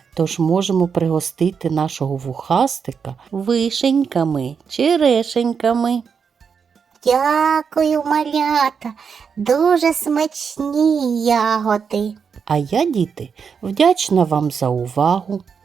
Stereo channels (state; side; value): quieter; left; 6.3 dB